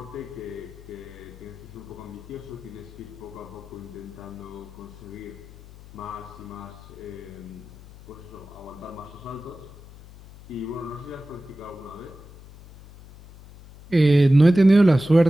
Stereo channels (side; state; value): left; noise; hum, 19 dB below the sound